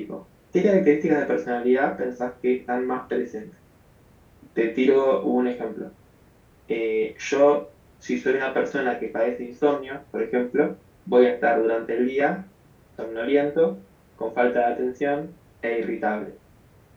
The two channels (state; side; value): identical; both; correlation 1.00